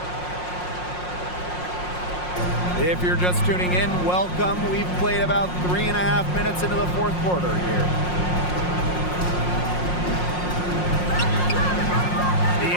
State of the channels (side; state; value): right; late; 5.6 ms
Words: If you're just tuning in, welcome. We've played about 3.5 minutes into the fourth quarter here. The